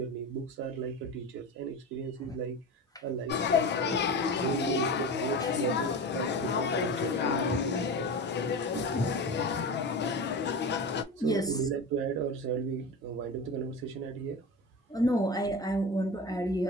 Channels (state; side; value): normal; both; correlation 0.27